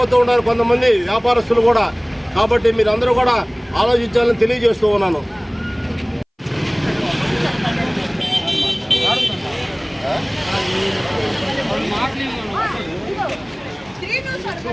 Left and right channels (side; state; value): both; identical; correlation 1.00